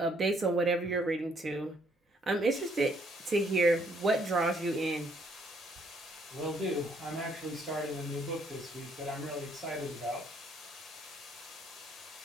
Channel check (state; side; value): normal; both; correlation 0.67